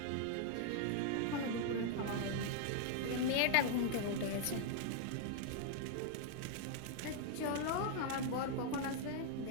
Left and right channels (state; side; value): different; both; correlation 0.00